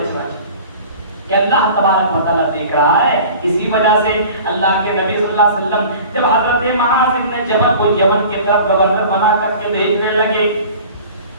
چاہیے کہ اللہ تبارک و تعالیٰ دیکھ رہا ہے. اسی وجہ سے اللہ کے نبی صلی اللہ علیہ وسلم جب حضرت معاذ بن جبل کو یمن کی طرف گورنر بنا کر کے بھیجنے لگے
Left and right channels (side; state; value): both; inverted; correlation -0.43